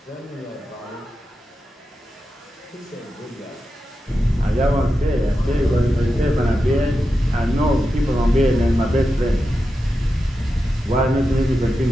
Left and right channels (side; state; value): both; normal; correlation 0.90